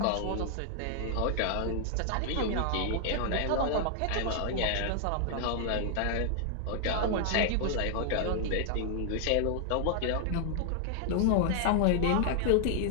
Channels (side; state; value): both; different; correlation 0.00